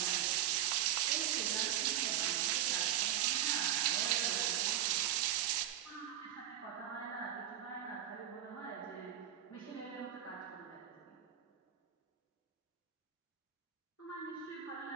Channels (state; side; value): quieter; left; 11.2 dB